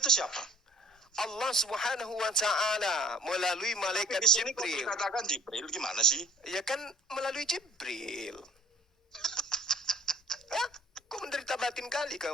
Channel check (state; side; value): normal; both; correlation 0.53